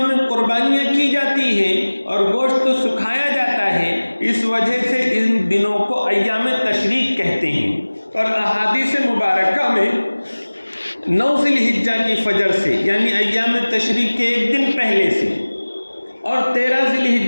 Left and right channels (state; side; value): inverted; both; correlation -1.00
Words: میں قربانیاں کی جاتی ہیں اور گوشت تو سکھایا جاتا ہے، اس وجہ سے ان دنوں کو ایام تشریق کہتے ہیں۔ اور احادیث مبارکہ میں 9 ذی الحجہ کی فجر سے، یعنی ایام تشریق کے ایک دن پہلے سے، اور 13 ذی